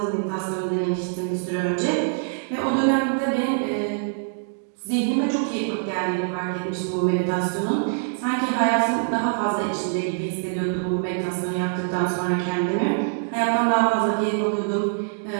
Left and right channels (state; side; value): silent; left; digital silence